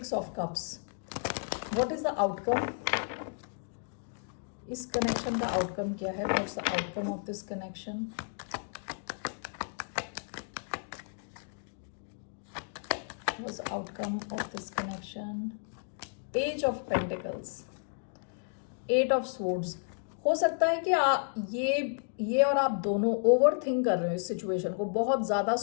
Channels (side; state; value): right; silent; digital silence